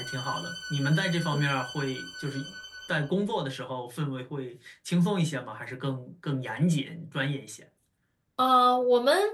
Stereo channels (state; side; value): identical; both; correlation 1.00